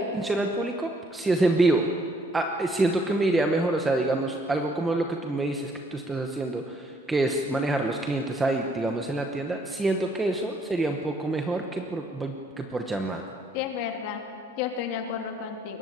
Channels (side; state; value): both; normal; correlation 0.66